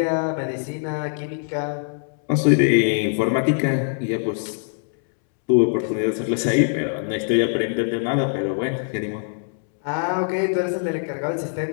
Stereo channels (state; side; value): silent; right; 64 dB below the other